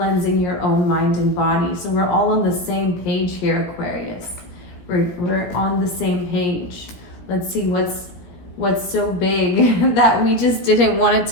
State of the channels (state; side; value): late; right; 17 ms